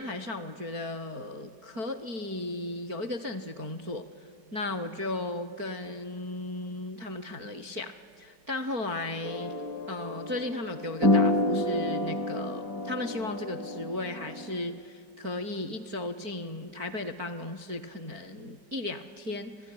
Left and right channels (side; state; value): left; late; 4.5 ms